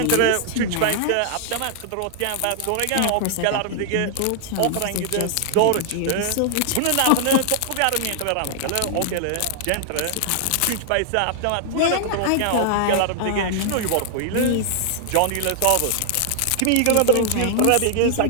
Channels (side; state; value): both; different; correlation 0.00